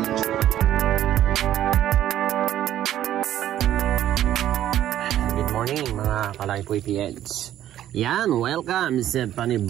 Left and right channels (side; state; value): left; quieter; 12.1 dB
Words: Good morning mga Kalaypoy PNs. Yan, welcome sa